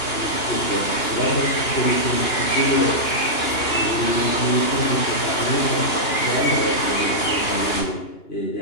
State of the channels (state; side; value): late; right; 2.8 ms